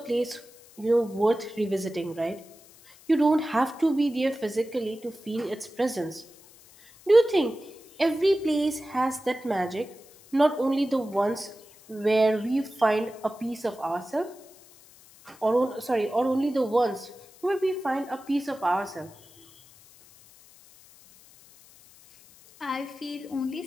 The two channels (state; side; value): noise; left; hiss, 24 dB below the sound